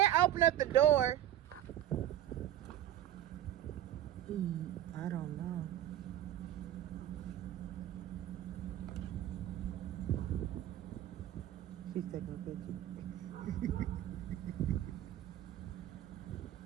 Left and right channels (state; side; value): quieter; left; 12.3 dB